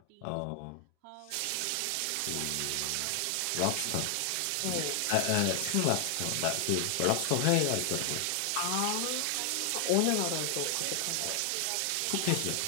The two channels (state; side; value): different; both; correlation 0.00